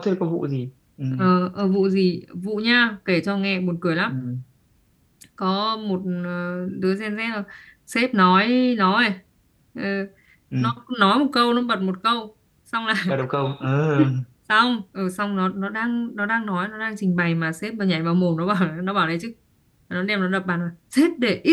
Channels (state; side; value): identical; both; correlation 1.00